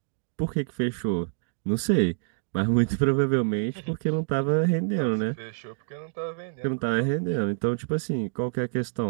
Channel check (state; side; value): silent; left; digital silence